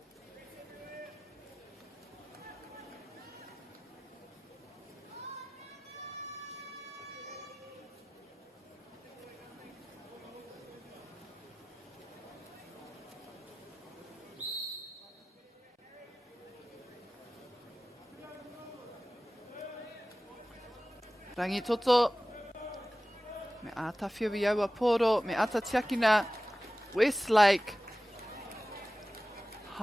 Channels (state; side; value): normal; both; correlation 0.96